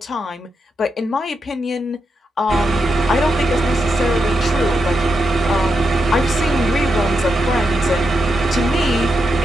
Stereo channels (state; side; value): normal; both; correlation 0.84